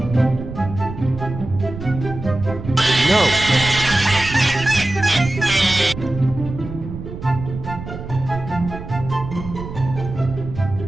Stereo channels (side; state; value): right; noise; rumble, 10 dB below the sound